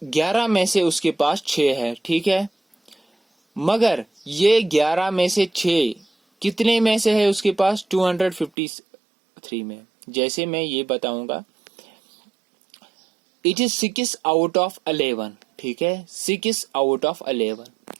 11 में से उसके पास 6 है, ठीक है। मगर ये 11 में से 6 कितने में से है उसके पास, 253 में। जैसे मैं ये बताऊंगा, इट इज 6 आउट ऑफ 11, ठीक है, 6 आउट ऑफ 11।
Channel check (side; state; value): left; drops out; at 8.5 s